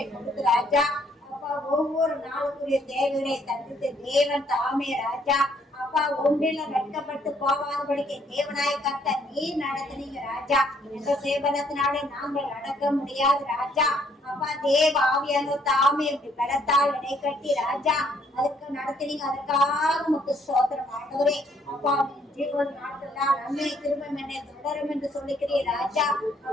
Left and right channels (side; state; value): both; normal; correlation 0.67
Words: கொடுத்து ராஜா. அப்பா ஒவ்வொரு நாளுக்குரிய தேவைகளை தடுத்து தேவன் தாமே ராஜா. அப்பா ஒன்றில வெட்கப்பட்டு போகாதபடிக்கு தேவனாய கர்த்தர் நீ நடத்தினீங்க ராஜா. எந்த சேவனத்தினாலே நாங்கள் நடக்க முடியாது ராஜா. அப்பா தேவ ஆவியான தாமே இப்படி பலத்தால் இடை கட்டி ராஜா அதுக்கு நடத்தினீங்க. அதற்காக உங்களுக்கு ஸ்தோத்திரம் ஆண்டவரே. அப்பா ஜீவன் நாட்கள்லாம் நன்மை திரும்பம் என்னை தொடரும் என்று சொல்லிக்கிறீர் ராஜா.